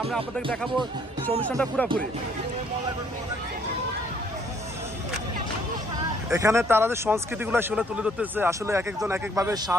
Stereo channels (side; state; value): both; normal; correlation 0.64